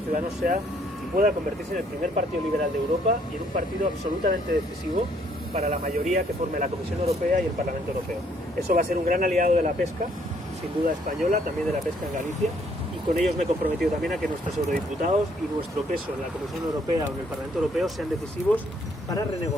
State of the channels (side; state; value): both; normal; correlation 0.66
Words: sea y pueda convertirse en el primer partido liberal de Europa y en un partido absolutamente decisivo para la mayoría que forme la Comisión Europea y el Parlamento Europeo. Eso va a ser un gran aliado de la pesca, sin duda española, también de la pesca en Galicia, y con ellos me he comprometido también a que nuestros eurodiputados y nuestro peso en la Comisión Europea o en el Parlamento Europeo sean decisivos para